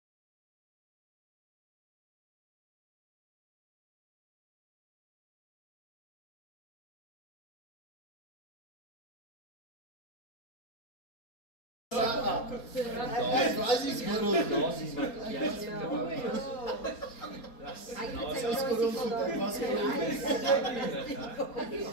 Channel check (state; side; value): late; right; 4.3 ms